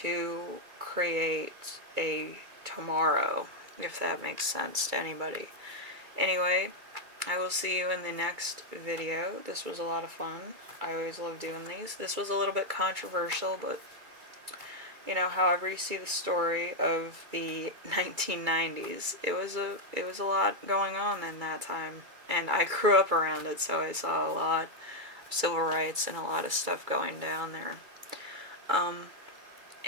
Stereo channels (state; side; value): late; left; 2.3 ms